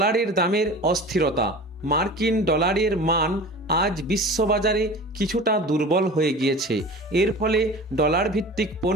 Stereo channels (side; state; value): both; normal; correlation 0.37